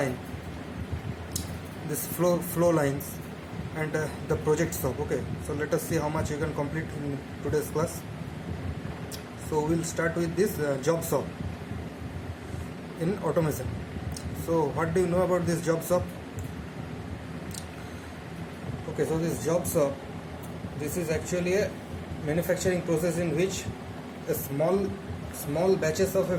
this flow lines, and the project shop. Okay, so let us see how much you can complete in today's class. So we'll start with this job shop in automation. So what do you know about this job shop? Okay, so this job shop, this is actually a manufacturing process in which a small batches of a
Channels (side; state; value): both; identical; correlation 1.00